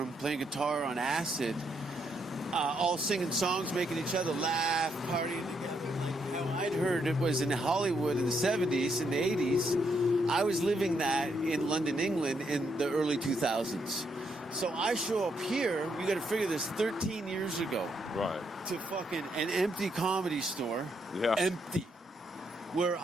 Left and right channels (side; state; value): both; normal; correlation 0.76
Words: playing guitar on acid, all singing songs, making each other laugh, partying together. Like how I'd heard it was in Hollywood in the 70s and the 80s. I was living that in London, England in the early 2000s. So I show up here, you got to figure this, 13 years ago. Right. To fucking an empty comedy store. Yeah. Empty. Where